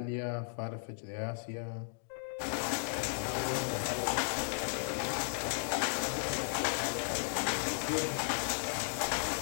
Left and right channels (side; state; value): right; silent; digital silence